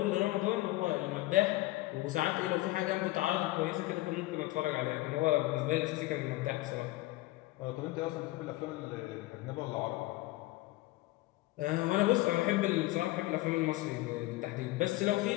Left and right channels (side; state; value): right; quieter; 18.8 dB